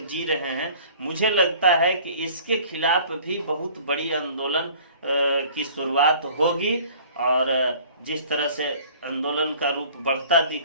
जी रहे हैं। मुझे लगता है कि इसके खिलाफ भी बहुत बड़ी आंदोलन की शुरुआत होगी और जिस तरह से आंदोलन का रूप बढ़ता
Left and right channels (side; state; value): both; inverted; correlation -0.49